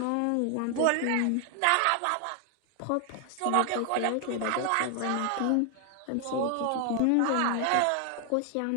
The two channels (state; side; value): different; both; correlation 0.00